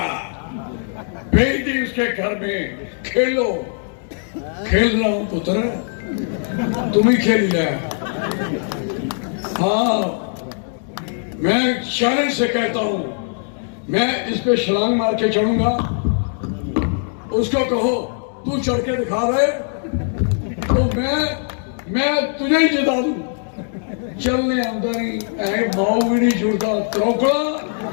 भेज दी उसके घर में, खेलो। खेल रहा हूं पुत्र, तुम ही खेल ले। हाँ, मैं चैलेंज से कहता हूं, मैं इस पे छलांग मार के चढ़ूंगा। उसको कहो तू चढ़ के दिखा रहे तो मैं तुझे ही जिता दूं। चलने आंदा नहीं, माओ भी नहीं जुड़ता त्रौकड़ा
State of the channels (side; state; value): right; silent; 59 dB below the other